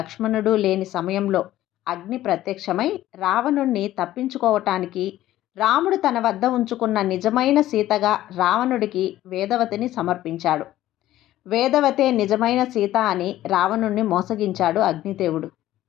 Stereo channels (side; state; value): right; quieter; 14.3 dB